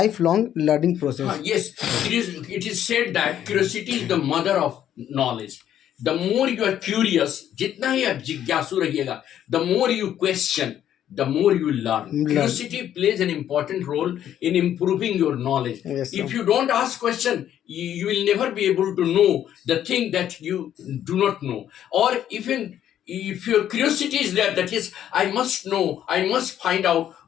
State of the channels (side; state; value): right; quieter; 10.7 dB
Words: learning process? Yes, it is said that curiosity is the mother of knowledge. The more you are curious, जितना ही आप जिज्ञासु रहिएगा, the more you question, the more you learn. Learn. Curiosity plays an important role in improving your knowledge. Yes, sir. If you don't ask question, you will never be able to know the thing that you do not know. Or even if your curiosity is there, that is, I must know, I must find out